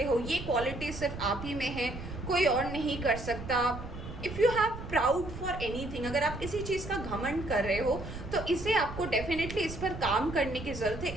हो, ये क्वालिटी सिर्फ आप ही में है, कोई और नहीं कर सकता। If you have proud for anything, अगर आप किसी चीज़ का घमंड कर रहे हो तो इसे आपको डेफिनेटली इस पर काम करने की ज़रूरत है,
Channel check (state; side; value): noise; right; rumble, 10 dB below the sound